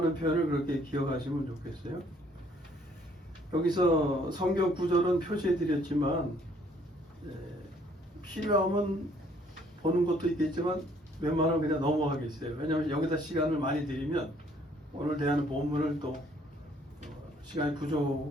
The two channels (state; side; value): normal; both; correlation 0.63